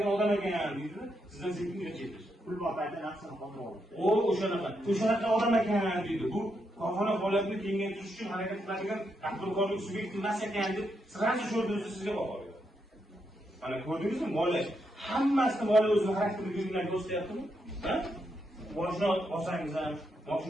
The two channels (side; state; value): both; normal; correlation 0.81